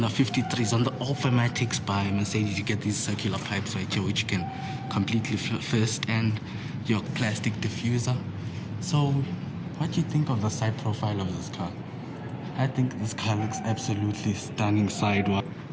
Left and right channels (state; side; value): identical; both; correlation 1.00